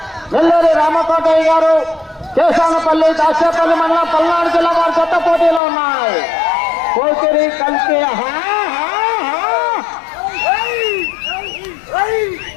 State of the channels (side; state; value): right; drops out; at 5.6 s